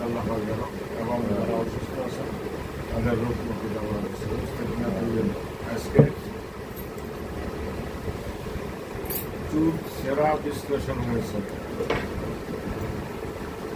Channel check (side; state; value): both; identical; correlation 1.00